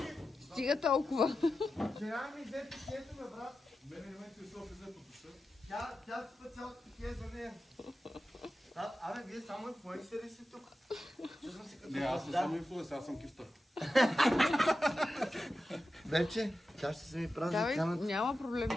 Стига толкова. Жена ми взе пикето ме, брат. Мене не ме интересува влезе по душа. Тя спа цялото пике за нея. Абе, вие само инфлуенсъри ли сте тук? Чувствам се като... Не, аз не съм инфлуенс, аз съм кифтър. Вепче, тя ще се ми прази Давай, камък. няма проблем,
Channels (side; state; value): both; normal; correlation 0.91